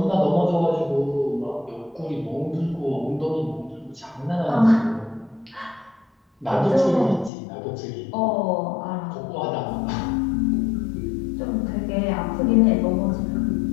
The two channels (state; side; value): drops out; right; at 7.3 s